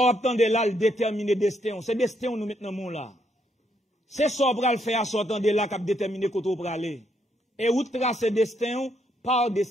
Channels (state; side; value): normal; both; correlation 0.75